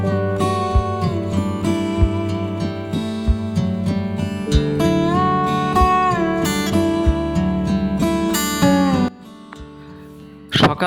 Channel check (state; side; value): identical; both; correlation 1.00